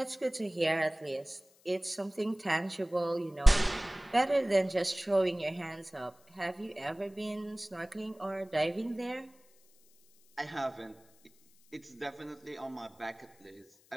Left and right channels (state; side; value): noise; left; hiss, 30 dB below the sound